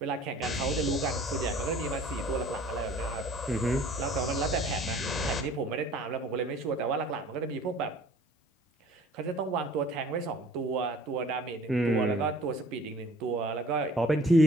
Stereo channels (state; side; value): normal; both; correlation 0.51